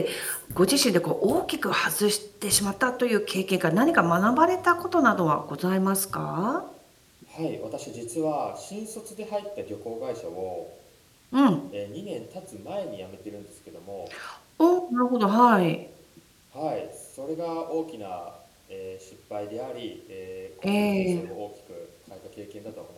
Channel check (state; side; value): identical; both; correlation 1.00